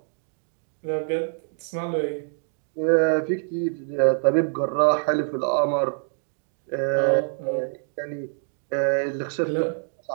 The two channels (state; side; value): silent; left; digital silence